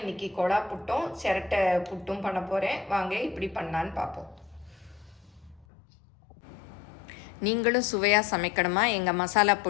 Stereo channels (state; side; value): drops out; right; at 5.7 s